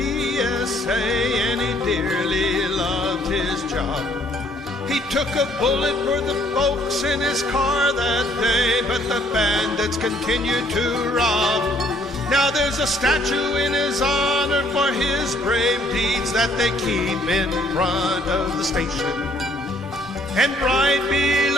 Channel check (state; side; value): normal; both; correlation 0.63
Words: and he dearly loved his job. He took a bullet for the folks in his car that day, but the bandits continued to rob. Now there's a statue in his honor for his brave deeds that they keep in front of the station. And right